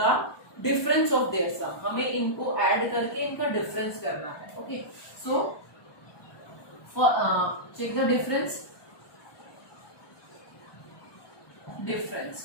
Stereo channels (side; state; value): right; late; 1.2 ms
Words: difference of their sum. हमें इनको add करके इनका difference करना है. Okay. So for check the difference.